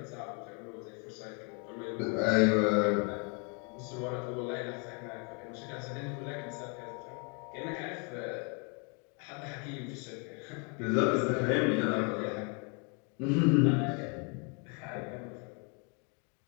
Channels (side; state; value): right; quieter; 35.9 dB